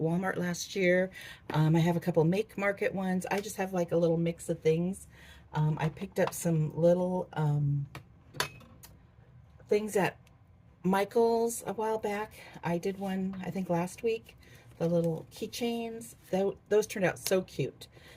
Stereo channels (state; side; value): identical; both; correlation 1.00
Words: last year. I have a couple Make Market ones. I just have like a little mix of things. I picked up some little things at Michael's a while back. I did one, I think, last week. The little keychains. Those turned out so cute.